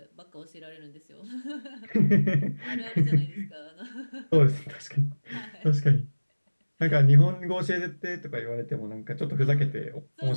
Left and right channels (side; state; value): both; inverted; correlation -1.00